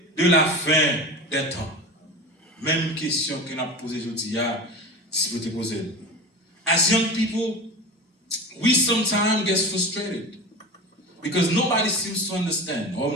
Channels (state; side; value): normal; both; correlation 0.30